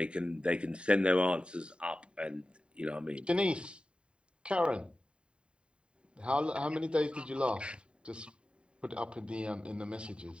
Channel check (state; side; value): late; left; 0.053 ms